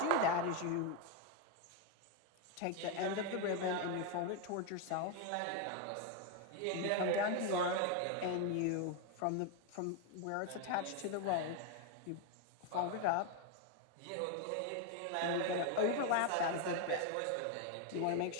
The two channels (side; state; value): both; different; correlation 0.01